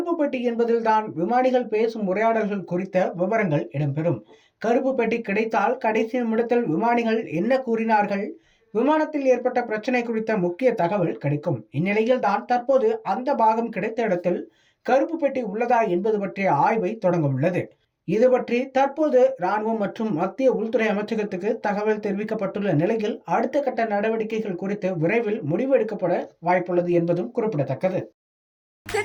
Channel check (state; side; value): identical; both; correlation 1.00